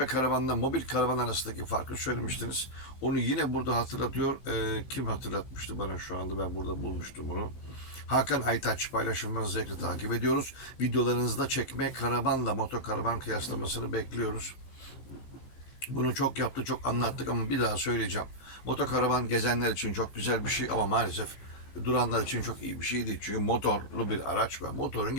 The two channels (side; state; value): right; late; 15 ms